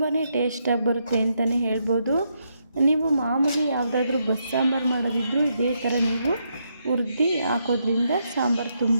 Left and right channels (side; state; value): both; inverted; correlation -0.80